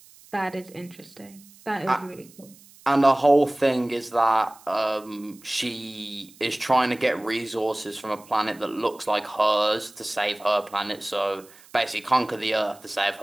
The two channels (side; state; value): right; noise; hiss, 24 dB below the sound